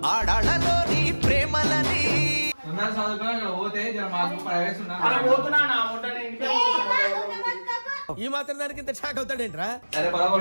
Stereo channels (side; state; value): both; inverted; correlation -1.00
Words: ఆడాళ్ళలోని ప్రేమలని ఈ మాత్రం దానికి ఇంత షాక్ అవుతాడేంట్రా?